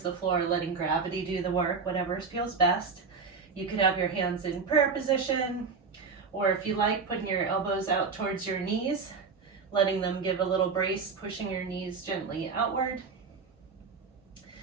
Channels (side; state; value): left; quieter; 5.0 dB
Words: the floor, letting gravity do the work, whatever feels best. You could have your hands in prayer position, or if you like, putting your elbows out towards your knees, letting them give a little brace, pushing your knees gently outward.